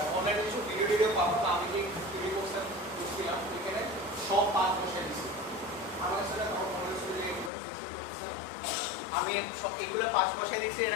অনলাইনে কিছু ভিডিও পাবো, আমি যে ভিডিও কোর্সটা করছিলাম এখানে সব 5 বসাই দিচ্ছি। আমার সাথে আমি এগুলো 5 বসাই দিচ্ছি,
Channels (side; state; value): right; drops out; at 7.5 s